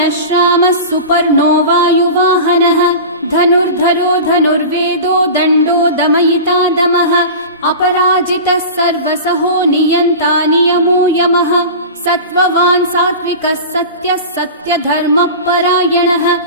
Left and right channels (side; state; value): both; inverted; correlation -0.31